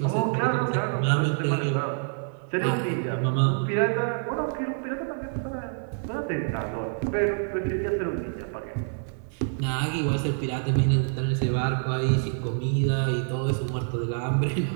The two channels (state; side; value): silent; left; 60 dB below the other